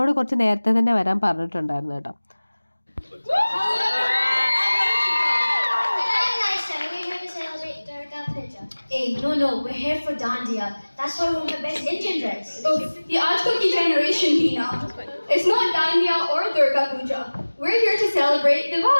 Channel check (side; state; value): both; inverted; correlation -1.00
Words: കുറച്ച് നേരത്തെ തന്നെ വരാൻ പറഞ്ഞിട്ടുണ്ടായിരുന്നു കേട്ടോ. Hey, no, we're here for Dandiya. That's why we're the best Indian dress. Oh, the Ajkoki generation, Pina. It's not Dandiya or Durga Puja. We're here to celebrate